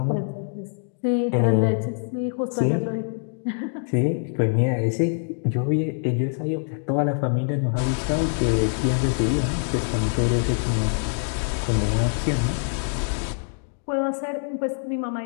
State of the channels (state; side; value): silent; right; digital silence